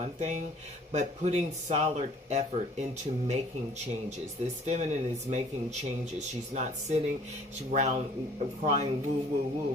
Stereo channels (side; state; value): both; normal; correlation 0.54